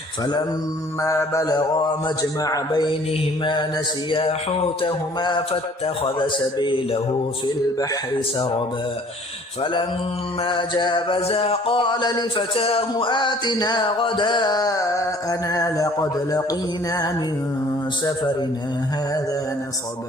فلما بلغا مجمع بينهما نسيا حوتهما فاتخذ سبيله في البحر سربا فلما جاوزا قال لفتاه آتنا غداءنا لقد لقينا من سفرنا هذا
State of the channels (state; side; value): normal; both; correlation 0.54